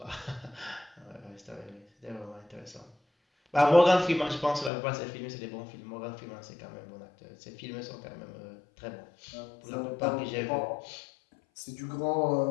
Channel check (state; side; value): drops out; right; at 4.7 s